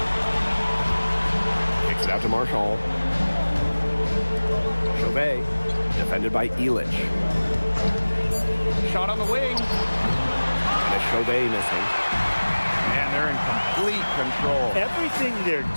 Kicks it out to Marshall. Chauvet, defended by Elich. Shot on the wing. And a Chauvet missing. And they're in complete control. Everything they're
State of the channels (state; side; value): inverted; both; correlation -1.00